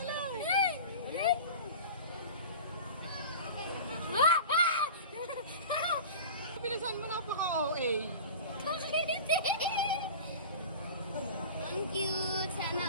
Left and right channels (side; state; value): both; inverted; correlation -0.35